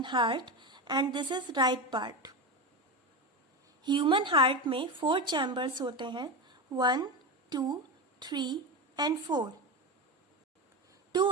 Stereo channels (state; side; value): normal; both; correlation 0.18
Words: heart and this is right part. Human heart में 4 chambers होते हैं, 1, 2, 3 and 4. 2